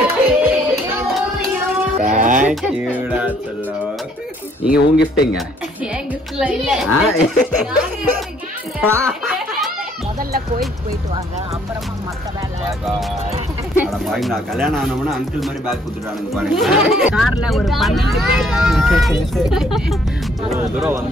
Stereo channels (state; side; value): normal; both; correlation 0.64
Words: தேங்க்யூடா சொல்லும். நீங்க உங்க கிஃப்ட்டுங்க. முதல்ல கோயிலுக்கு போயிட்டு வாங்க, அப்புறமா மத்த வேலை. நான் கல்யாணம் ஆனோம்னா அங்கிள் மாதிரி பேக் கொடுத்துட்டானுங்க பாருங்க. கார்ல ஒரு 12 பேர் தூரம்